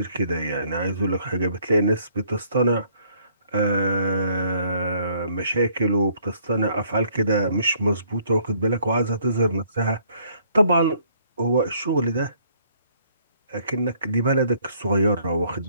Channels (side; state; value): both; inverted; correlation -0.64